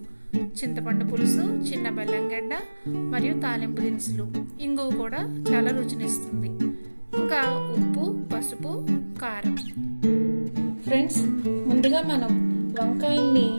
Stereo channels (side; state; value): both; inverted; correlation -1.00